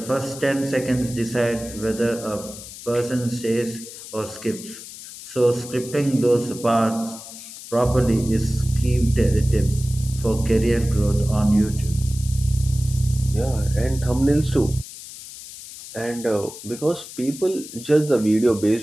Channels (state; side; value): noise; left; hiss, 14 dB below the sound